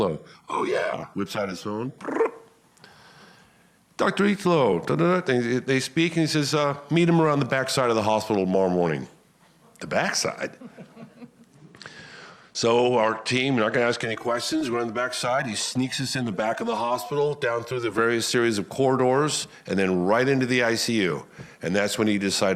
Oh, yeah. Whips out his phone. Dr. Italo. They speak, and he says, meet him around the backside of the hospital tomorrow morning. The backside? So our team, we're not going to ask any questions. We're on the backside. He sneaks us in the back of the hospital, down through the various series of corridors, and then right into the ICU. And that's when he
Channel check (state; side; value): identical; both; correlation 1.00